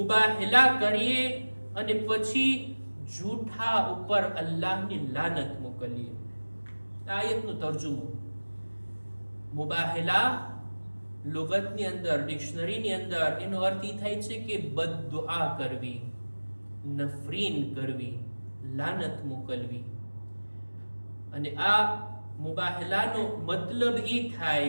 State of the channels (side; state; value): both; inverted; correlation -1.00